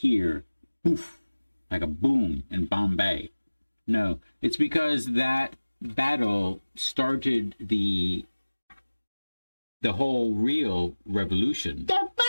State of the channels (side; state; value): both; inverted; correlation -1.00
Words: poof, like a boom in Bombay. No, it's because that battle started the whole real revolution. The